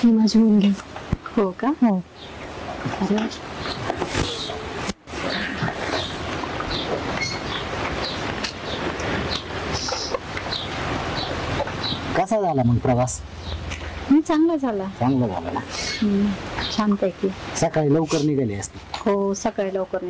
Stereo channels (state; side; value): identical; both; correlation 1.00